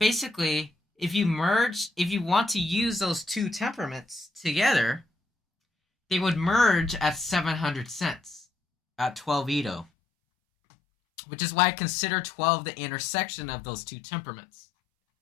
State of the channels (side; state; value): right; drops out; at 9.9 s